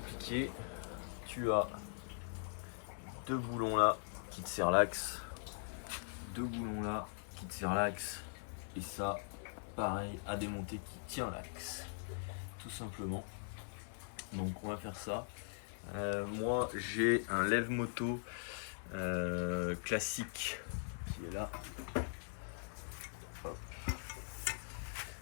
tu as deux boulons là qui te serrent l'axe, deux boulons là qui te serrent l'axe, et ça pareil à démonter qui tient l'axe, tout simplement. Donc on va faire ça. Moi j'ai un lève-moto classique qui est là. Hop.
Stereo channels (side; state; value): right; silent; 50 dB below the other